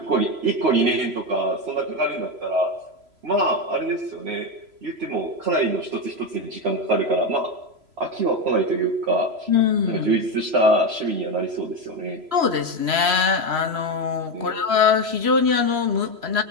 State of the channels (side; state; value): left; late; 3.0 ms